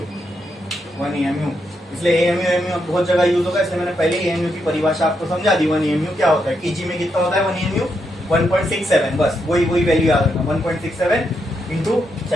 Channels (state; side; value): normal; both; correlation 0.81